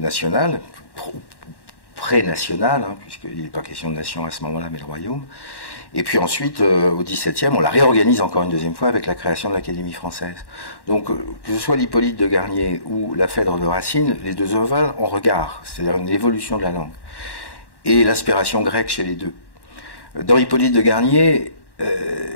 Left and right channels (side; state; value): right; late; 1.1 ms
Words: pré-national, hein, puisqu'il n'est pas question de nation à ce moment-là, mais de royaume. Et puis ensuite, au XVIIe, on la réorganise encore une deuxième fois avec la création de l'Académie française. Donc, que ce soit l'Hippolyte de Garnier ou la Phèdre de Racine, les deux œuvres ont regard, c'est-à-dire une évolution de la langue. Et l'inspiration grecque chez les deux. Dans Hippolyte de Garnier,